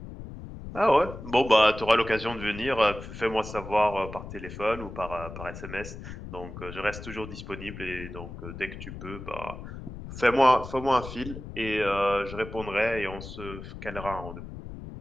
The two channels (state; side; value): noise; left; rumble, 11 dB below the sound